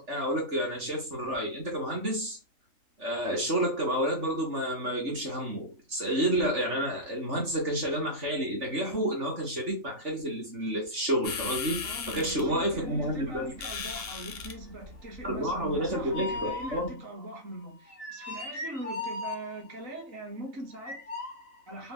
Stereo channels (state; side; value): late; left; 3.4 ms